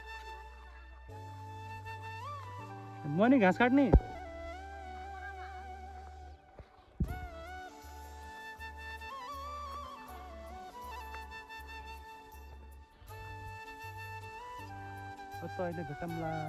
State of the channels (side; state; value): both; identical; correlation 1.00